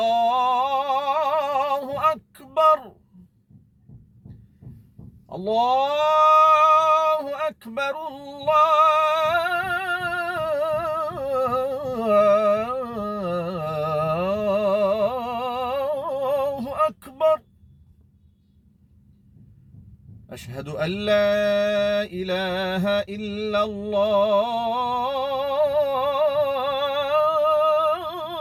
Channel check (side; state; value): both; identical; correlation 1.00